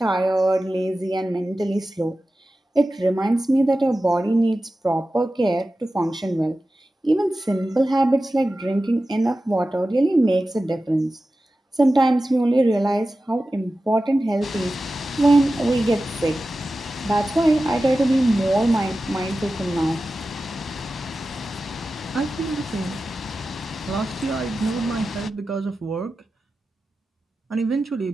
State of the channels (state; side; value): normal; both; correlation 0.94